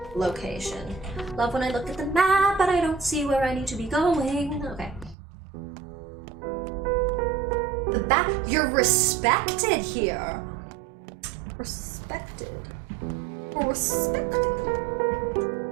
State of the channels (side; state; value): left; drops out; at 5.2 s